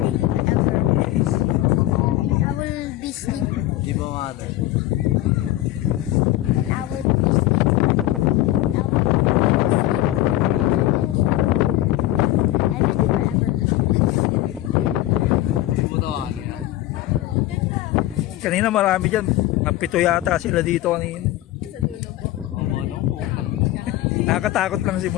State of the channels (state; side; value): quieter; right; 15.5 dB